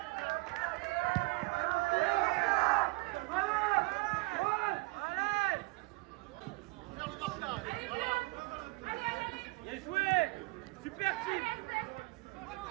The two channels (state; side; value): quieter; left; 25.5 dB